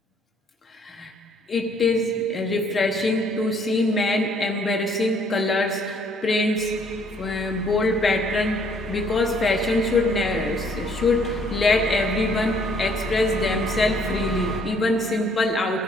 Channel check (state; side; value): normal; both; correlation 0.64